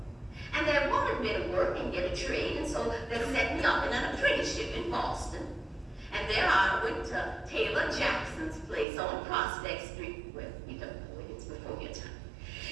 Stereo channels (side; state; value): left; drops out; at 8.8 s